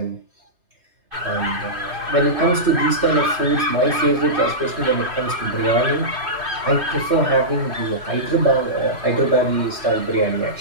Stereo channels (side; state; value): left; late; 3.1 ms